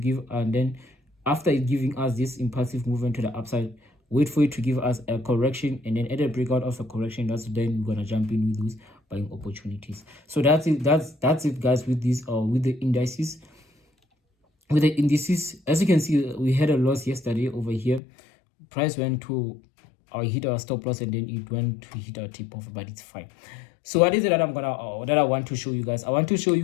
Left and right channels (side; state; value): right; drops out; at 18.0 s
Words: and then after it giving us this impulsive movement to the upside, wait for it to give us a correction, and then at the breakout of a correction, that's then we're gonna jump in with those buying opportunities. So that's it. That's it, guys, with this with the indices. With the indices, as you can see, we had a loss yesterday over here. Price went to hit our stop loss, and then it went to hit our tip off, but it's fine. So what is it that I want to show you guys? I want to show